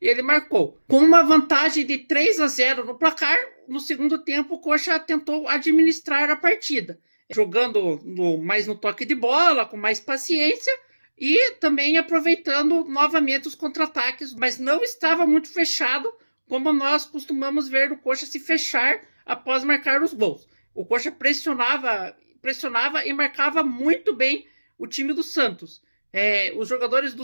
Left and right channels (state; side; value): inverted; both; correlation -1.00